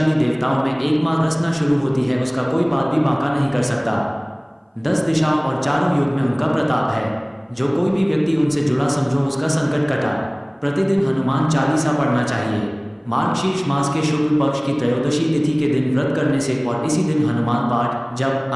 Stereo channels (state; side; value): identical; both; correlation 1.00